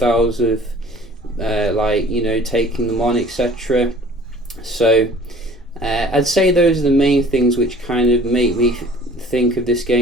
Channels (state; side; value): normal; both; correlation 0.49